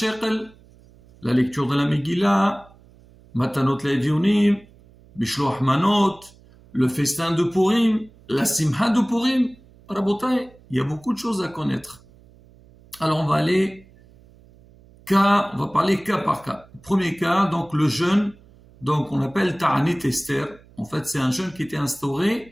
la lecture de la Megillah, Matanot Le'Evionim, Bishloach Manot, le festin de Purim, la Simha de Purim. Rabotai, il y a beaucoup de choses à connaître. Alors on va parler cas par cas. Premier cas, donc le jeûne, donc on appelle Ta'anit Esther. En fait, c'est un jeûne qui était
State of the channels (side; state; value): right; noise; hum, 26 dB below the sound